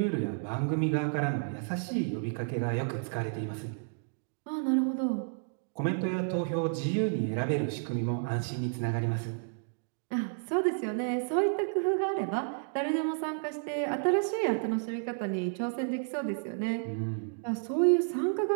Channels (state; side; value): silent; left; digital silence